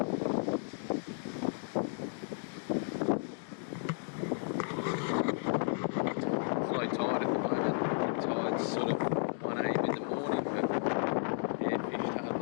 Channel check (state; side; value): silent; right; digital silence